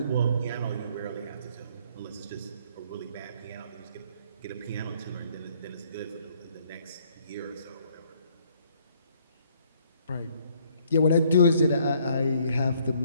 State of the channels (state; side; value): inverted; both; correlation -0.65